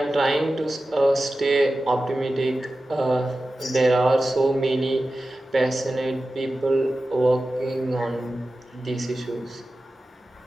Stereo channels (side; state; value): both; normal; correlation 0.94